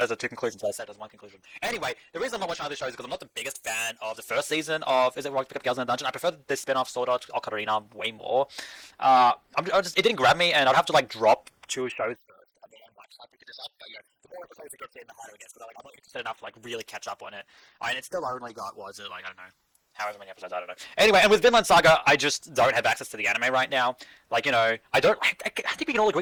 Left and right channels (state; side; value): identical; both; correlation 1.00